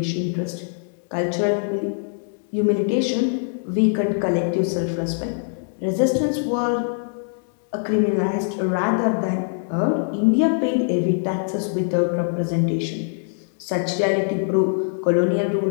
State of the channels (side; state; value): right; silent; digital silence